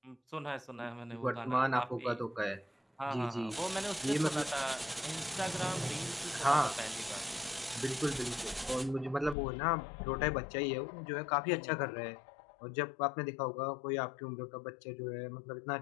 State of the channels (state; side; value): drops out; right; at 9.3 s